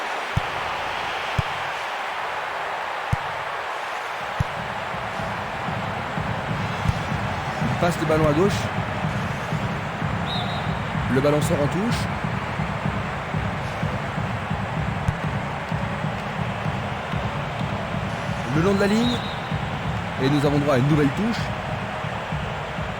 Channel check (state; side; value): identical; both; correlation 1.00